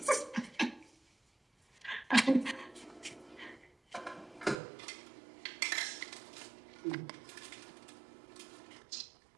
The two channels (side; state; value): left; drops out; at 4.6 s